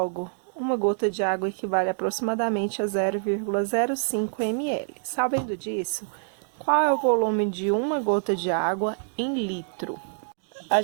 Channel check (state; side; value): silent; left; digital silence